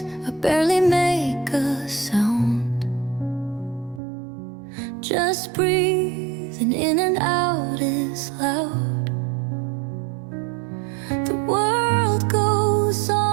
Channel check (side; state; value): left; drops out; at 4.0 s